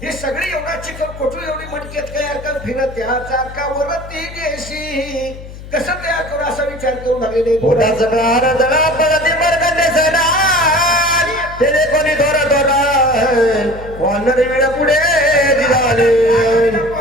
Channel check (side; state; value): left; noise; hum, 14 dB below the sound